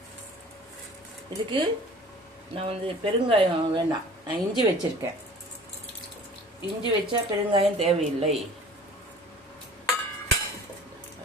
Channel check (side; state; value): both; normal; correlation 0.45